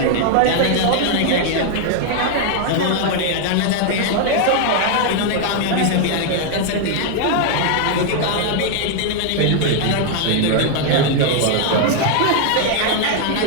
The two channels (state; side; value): different; both; correlation 0.00